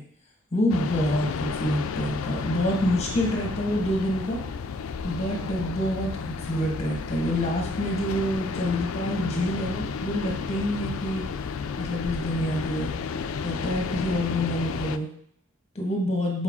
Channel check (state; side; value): normal; both; correlation 0.64